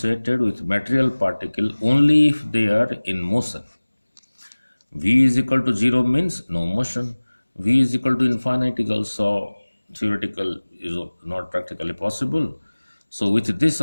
with material particle only if they are in motion. V is equal to 0 means no motion. V is equal to infinite is also theoretical, is not practically possible. So with this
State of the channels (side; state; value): both; inverted; correlation -1.00